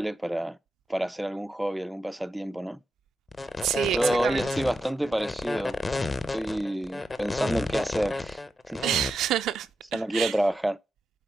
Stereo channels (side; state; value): both; normal; correlation 0.87